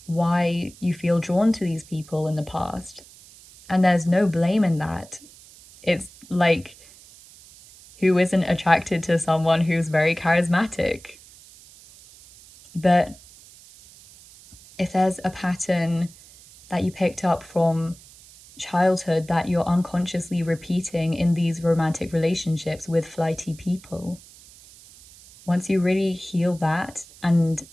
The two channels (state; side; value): noise; right; hiss, 22 dB below the sound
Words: why you feel drawn to these people in the past. And there's no blame in that. It's like, who isn't attracted to someone who's very charismatic? But if there's a pattern that you picked up from childhood that you're unconsciously repeating in these romantic relationships with flighty people, once you really heal that and